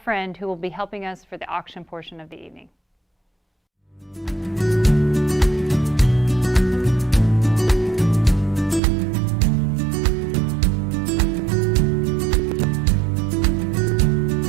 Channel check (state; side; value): drops out; left; at 8.8 s